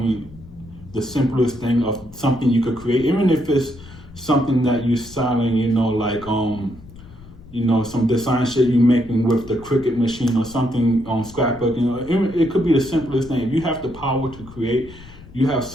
the simplest thing of something you could create, even if it's something that you're selling, you know, like, you know, some design shit you making with the Cricut machine or something on scrapbook, you know, it could be the simplest thing. If you have the power to create, you have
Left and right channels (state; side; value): noise; left; rumble, 19 dB below the sound